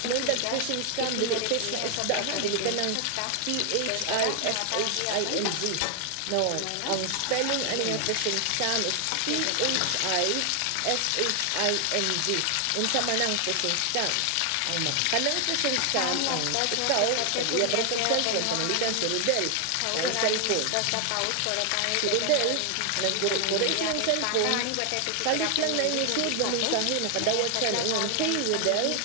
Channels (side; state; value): both; different; correlation 0.00